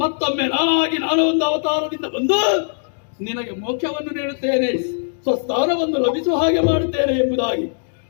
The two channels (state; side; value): silent; right; digital silence